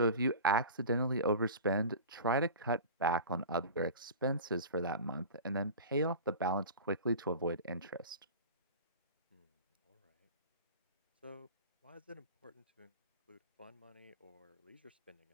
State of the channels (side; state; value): both; inverted; correlation -0.34